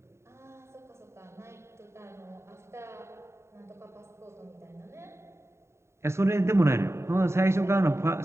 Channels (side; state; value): left; late; 0.13 ms